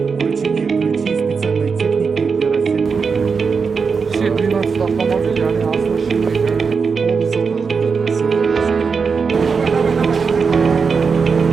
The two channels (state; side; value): quieter; left; 5.4 dB